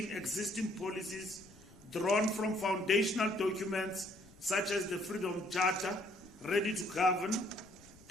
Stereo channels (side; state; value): left; noise; rumble, 24 dB below the sound